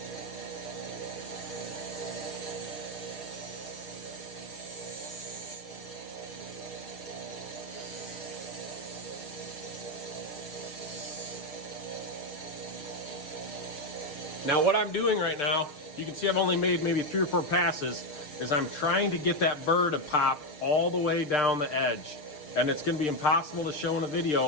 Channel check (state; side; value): late; right; 6.7 ms